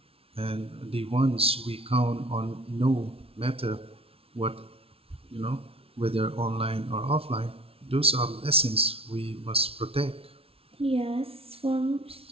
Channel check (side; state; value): left; late; 0.27 ms